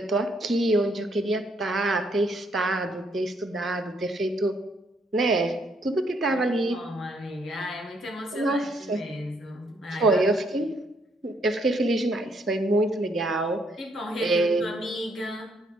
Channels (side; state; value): both; normal; correlation 0.71